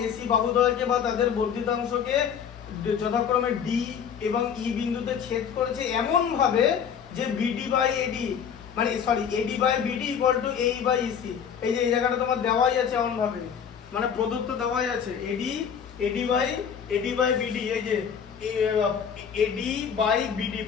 এসি বাহুদ্বয়কে বা তাদের বর্ধিতাংশকে যথাক্রমে ডি এবং ই বিন্দুতে ছেদ করেছে এমন ভাবে যে বিডি বাই এডি, মানে sorry AD by BD equal to AE by EC. এই যে এই জায়গাটা তোমার দেওয়াই আছে এমন ভাবে, মানে প্রদত্ত দেওয়াই আছে এডি বাই বিডি, এই যে এডি বাই বিডি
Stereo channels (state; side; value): quieter; right; 7.6 dB